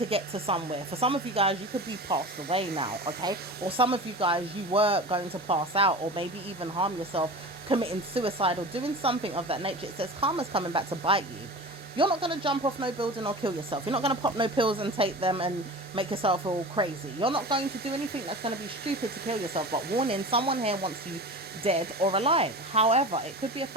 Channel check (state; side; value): normal; both; correlation 0.33